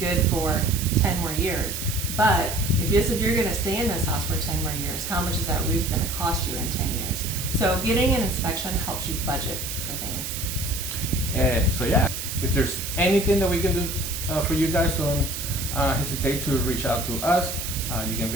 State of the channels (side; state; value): right; noise; hiss, 5 dB below the sound